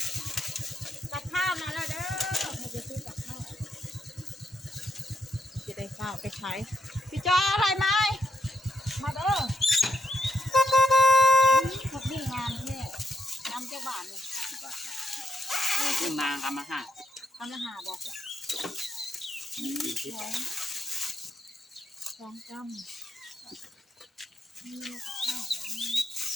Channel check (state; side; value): normal; both; correlation 0.80